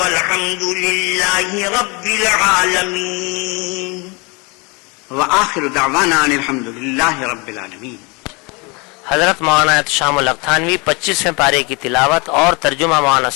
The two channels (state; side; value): quieter; right; 29.1 dB